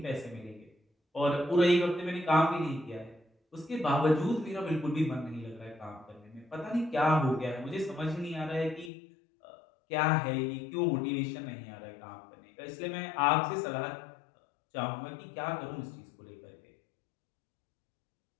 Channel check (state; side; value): drops out; right; at 8.9 s